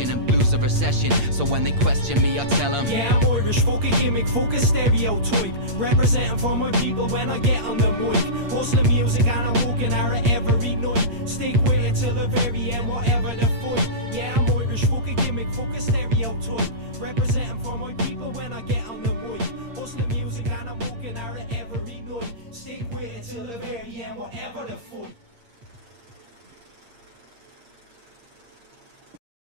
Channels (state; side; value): late; left; 8.6 ms